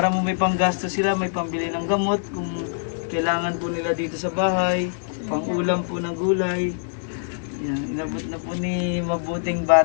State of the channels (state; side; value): silent; right; digital silence